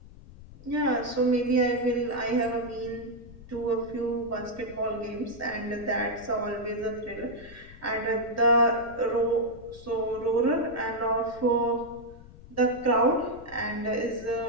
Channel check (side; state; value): left; noise; rumble, 18 dB below the sound